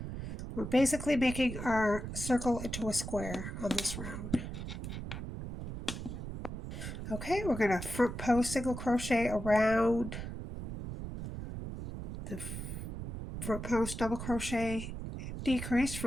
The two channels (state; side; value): noise; right; rumble, 7 dB below the sound